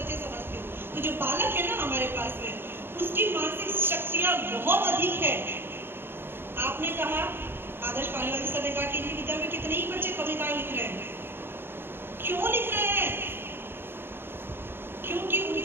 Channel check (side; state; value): left; late; 0.11 ms